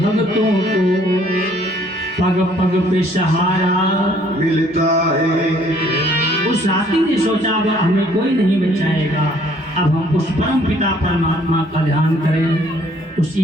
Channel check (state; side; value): normal; both; correlation 0.61